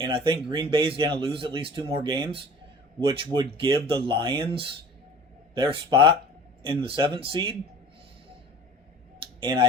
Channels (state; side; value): normal; both; correlation 0.43